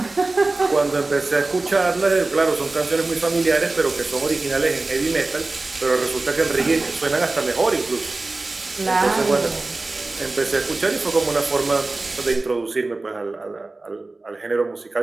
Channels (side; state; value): left; quieter; 3.3 dB